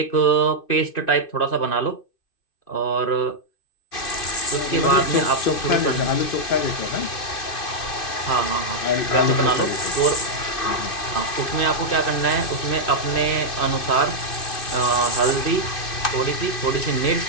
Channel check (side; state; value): right; late; 2.6 ms